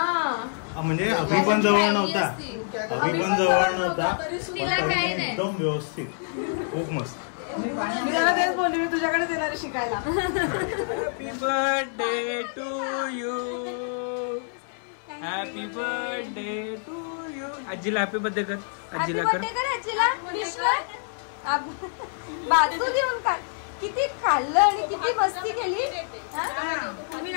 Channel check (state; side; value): silent; right; 60 dB below the other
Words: म्हणजे अभि पण जवळ नव्हता. अभि पण जवळ नव्हता. तिला काय नाही. एकदम व्यवस्थित. खूप मस्त. मी त्याला तेच बोलले मी तुझ्याकडे येणार शिकायला. Happy birthday to you. Happy birthday to you. आजीला हॅपी बर्थडे कर. आजीला कर. बाजू देऊन काय किती खाल्लं आणि किती मस्ती केली. तुम्ही